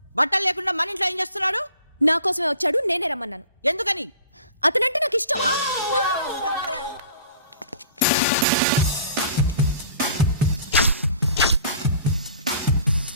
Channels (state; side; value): inverted; both; correlation -0.48